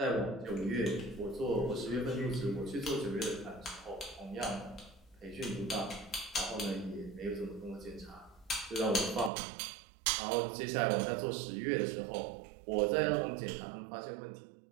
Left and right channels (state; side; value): drops out; left; at 9.3 s